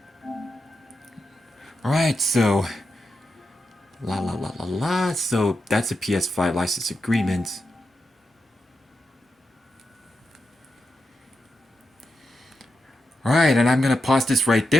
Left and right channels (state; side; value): normal; both; correlation 0.87